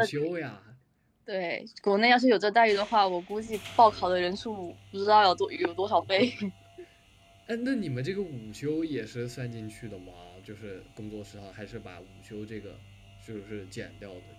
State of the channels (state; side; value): identical; both; correlation 1.00